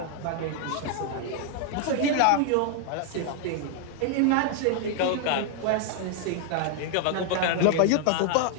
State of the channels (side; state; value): both; different; correlation 0.00